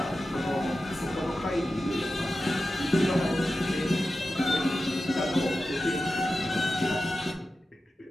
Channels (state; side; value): normal; both; correlation 0.92